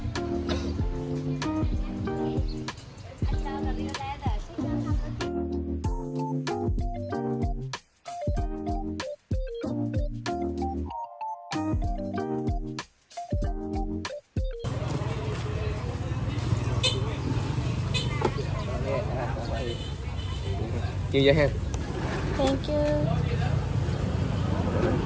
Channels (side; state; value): both; identical; correlation 1.00